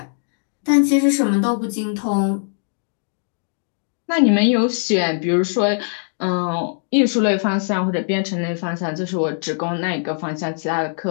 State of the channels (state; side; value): silent; right; digital silence